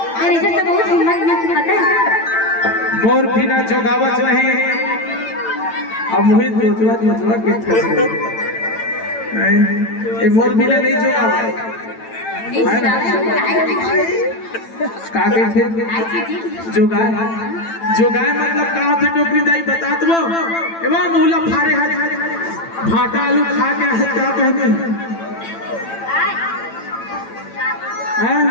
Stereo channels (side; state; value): right; late; 8.9 ms